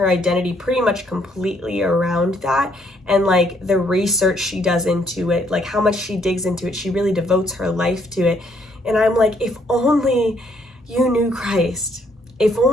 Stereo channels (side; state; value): both; normal; correlation 0.69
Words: identity pretty much completely around that. And like the research she does into it, like how much she digs into it, she really devotes her life to it. And I'm like, if only you knew Christ, if